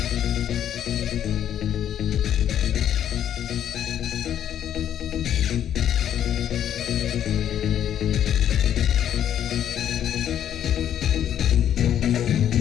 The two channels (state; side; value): quieter; right; 10.2 dB